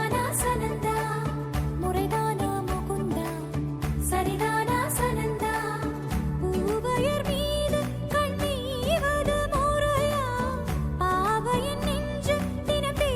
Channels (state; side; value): identical; both; correlation 1.00